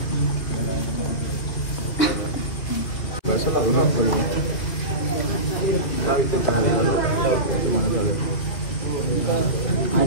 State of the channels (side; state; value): right; late; 2.7 ms